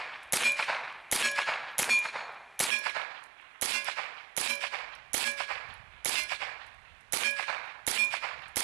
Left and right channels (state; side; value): drops out; left; at 2.7 s